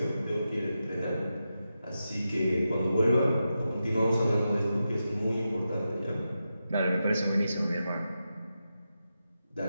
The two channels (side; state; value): both; inverted; correlation -0.89